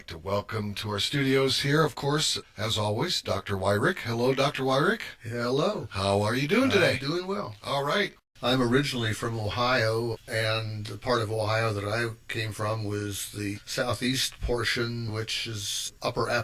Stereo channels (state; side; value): identical; both; correlation 1.00